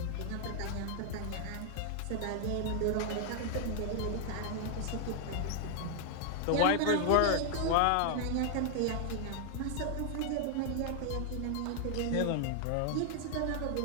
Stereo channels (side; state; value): both; different; correlation 0.00